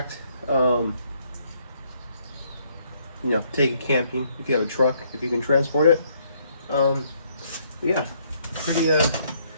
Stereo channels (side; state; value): both; inverted; correlation -0.68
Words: You know, take it camping if you have a truck, if you can transport it. Yeah,